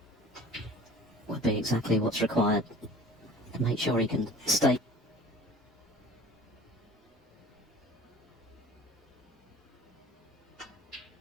would be exactly what's required to make sure he can stay.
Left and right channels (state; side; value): normal; both; correlation 0.45